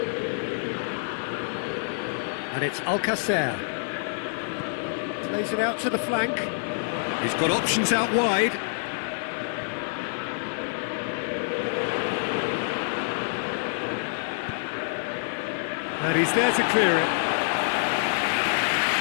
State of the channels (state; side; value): silent; right; digital silence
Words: And it's Alcacer. Plays it out to the flank. He's got options out wide. And he's there to clear it.